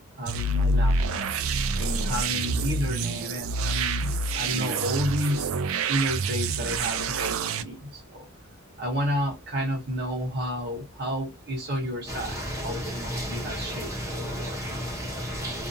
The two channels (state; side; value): normal; both; correlation 0.49